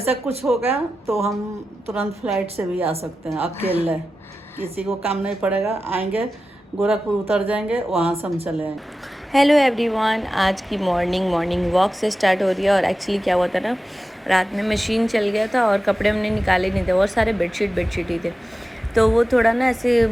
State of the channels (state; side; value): normal; both; correlation 0.93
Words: कुछ हो गया तो हम तुरंत फ्लाइट से भी आ सकते हैं अकेले, किसी को काम नहीं पड़ेगा। आएंगे गोरखपुर, उतर जाएंगे, वहाँ से हम चले आएंगे। हेलो एवरीवन, आज की मॉर्निंग वॉक से स्टार्ट हो रही है। और एक्चुअली क्या हुआ था ना, रात में मशीन चल गया था और कपड़े हमने निकाले नहीं थे और सारे बेडशीट ही थे, तो वो थोड़ा ना ऐसे